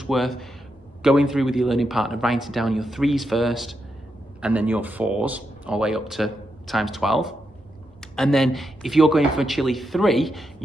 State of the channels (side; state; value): both; normal; correlation 0.84